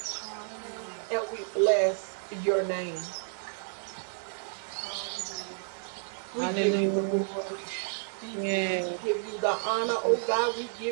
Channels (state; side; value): silent; left; 57 dB below the other